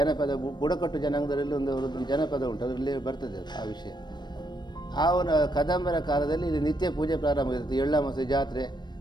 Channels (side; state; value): right; late; 0.21 ms